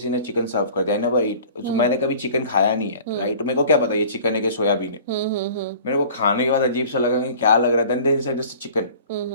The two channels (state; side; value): inverted; both; correlation -0.46